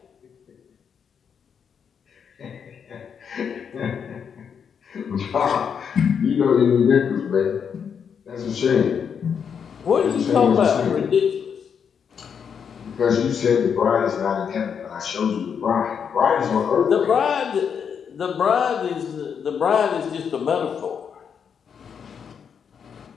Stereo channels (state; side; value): quieter; right; 7.1 dB